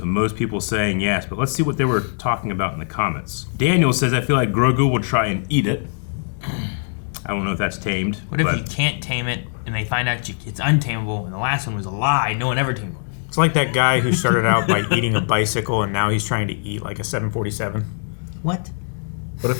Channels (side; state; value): right; silent; digital silence